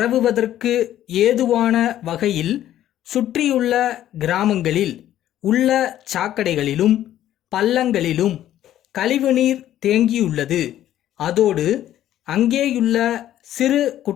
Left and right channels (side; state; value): right; quieter; 12.3 dB